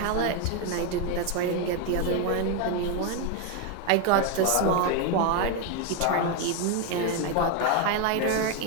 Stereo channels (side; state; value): both; different; correlation 0.01